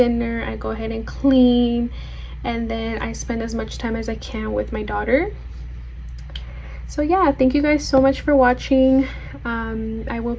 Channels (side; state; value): both; identical; correlation 1.00